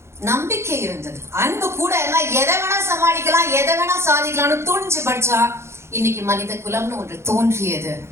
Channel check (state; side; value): late; left; 0.13 ms